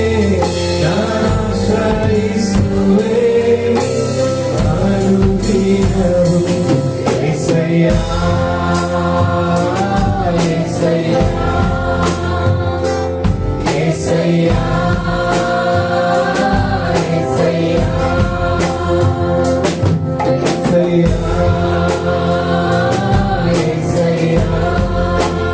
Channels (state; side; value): identical; both; correlation 1.00